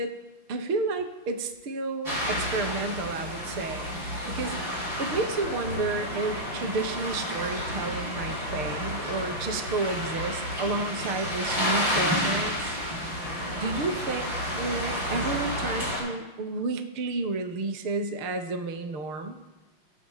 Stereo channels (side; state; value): left; late; 6.5 ms